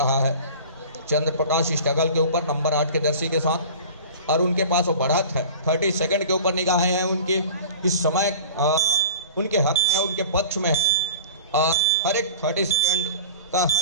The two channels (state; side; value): inverted; both; correlation -0.39